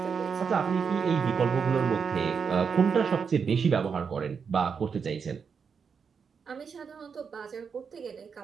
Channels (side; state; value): left; quieter; 6.1 dB